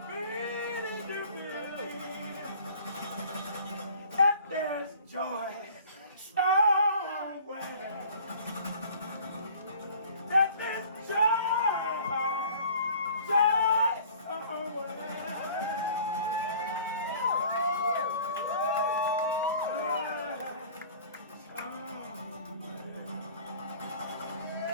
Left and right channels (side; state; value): both; inverted; correlation -0.48